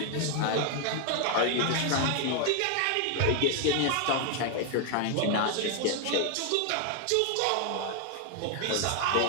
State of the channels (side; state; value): both; different; correlation 0.00